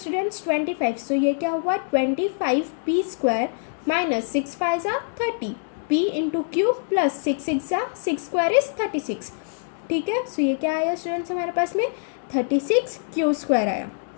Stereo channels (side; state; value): right; silent; digital silence